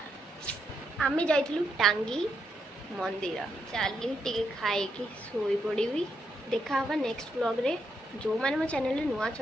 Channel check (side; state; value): both; normal; correlation 0.80